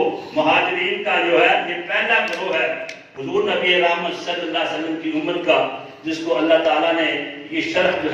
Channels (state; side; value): identical; both; correlation 1.00